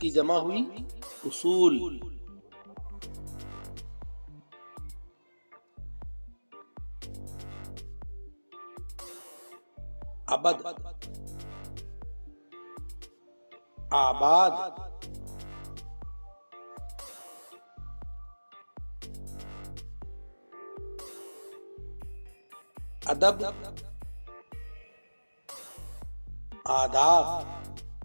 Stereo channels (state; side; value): inverted; both; correlation -1.00